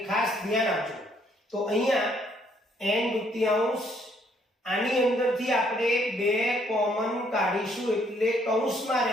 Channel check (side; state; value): both; normal; correlation 0.67